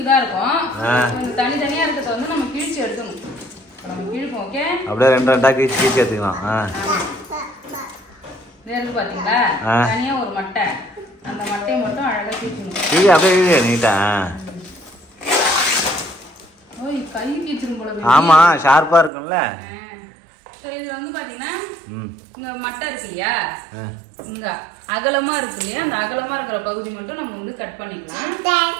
தான் இருக்கும். தனித்தனியா இருக்கிறத வந்து நம்ம கிழிச்சு எடுக்கணும். நம்ம கிழிப்போம். ஓகே, அப்படியே ரெண்டு ரெண்டா கிழிச்சு எடுத்துக்கலாம். இருக்கு பாத்தீங்களா, தனியா ஒரு மட்டை. அந்த மட்டையை மட்டும் அழகா கிழிக்கணும். இது அப்படியே நீட்டா. ஓய், கை கிழிச்சிரும் போல. ஆமா, ஷார்ப்பா இருக்கும்ல. இதுல வந்து பாத்தீங்கன்னா இங்க மட்டை இருக்கு இல்லையா, இங்க அகலமா இருக்கு இல்லையா, அந்த அகலமா இருக்கிற பகுதி மட்டும் நம்ம வந்து கட் பண்ணிக்கலாம்.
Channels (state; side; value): drops out; left; at 19.1 s